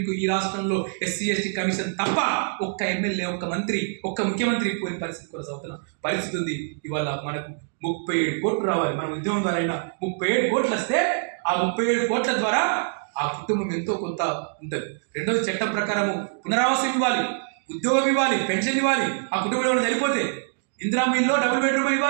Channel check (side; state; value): left; silent; digital silence